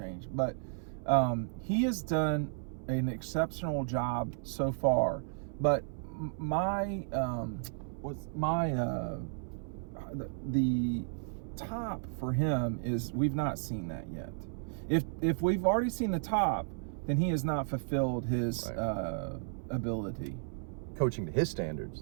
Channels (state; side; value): silent; left; 55 dB below the other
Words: But he has done an exceptional job so far. But the top for him is we've not seen that yet. If we've already seen the top, then he has not fulfilled his ability. Coaching to his